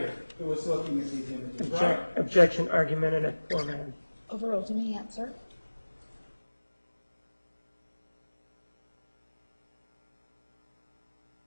who was looking at these images, right? Objection argumentative. Poor man. Overruled. You may answer.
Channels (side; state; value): both; inverted; correlation -1.00